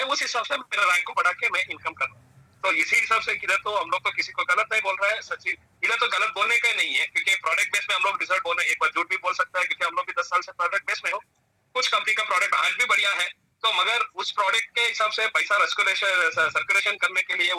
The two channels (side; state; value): both; identical; correlation 1.00